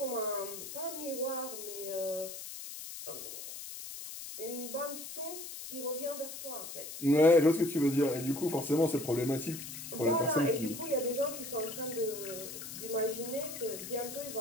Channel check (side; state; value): left; noise; hiss, 9 dB below the sound